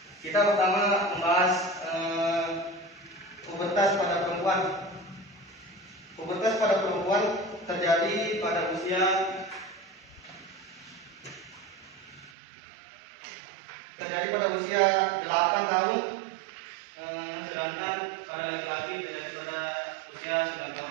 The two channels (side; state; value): left; drops out; at 12.3 s